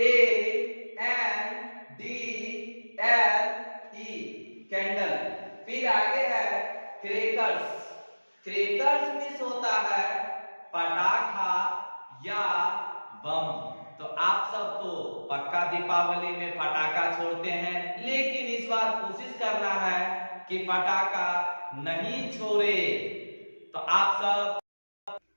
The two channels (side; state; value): both; inverted; correlation -1.00